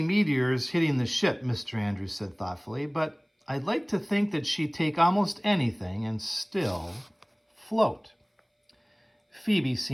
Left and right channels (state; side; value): identical; both; correlation 1.00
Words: meteors hitting the ship, Mr. Andrews said thoughtfully, but I'd like to think that she'd take almost anything and still float. Phoebe